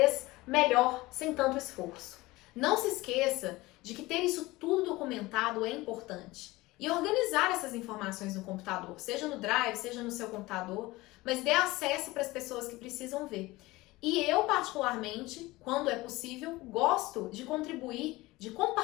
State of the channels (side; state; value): right; quieter; 20.2 dB